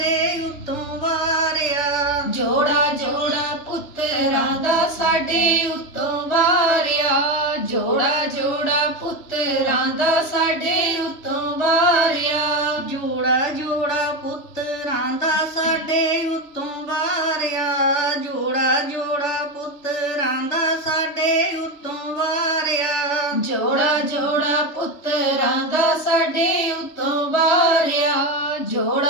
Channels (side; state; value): right; late; 3.2 ms